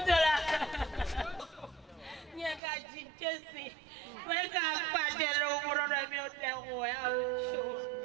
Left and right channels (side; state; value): left; drops out; at 2.6 s